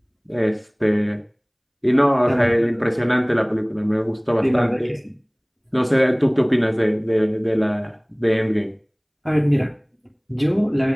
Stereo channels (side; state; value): both; identical; correlation 1.00